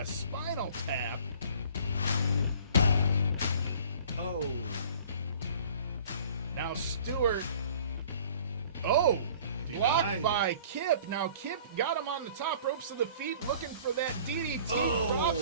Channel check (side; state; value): both; inverted; correlation -0.50